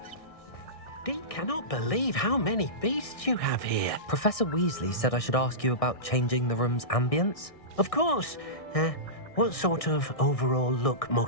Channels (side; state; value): right; late; 1.6 ms